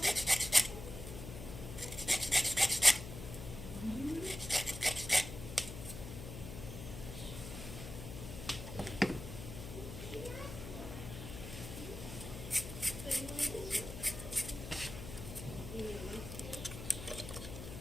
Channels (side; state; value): left; noise; hum, 9 dB below the sound